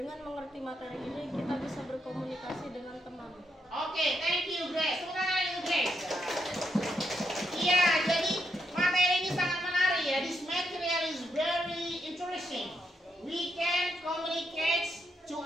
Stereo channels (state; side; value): normal; both; correlation 0.80